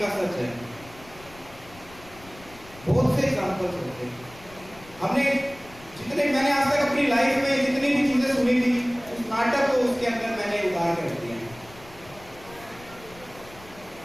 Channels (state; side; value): noise; left; rumble, 21 dB below the sound